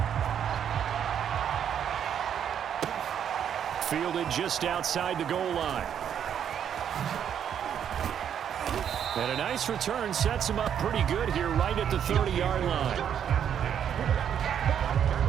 Fielded just outside the goal line. And a nice return sets him up pretty good here right at the 30-yard line.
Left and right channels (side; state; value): left; quieter; 8.9 dB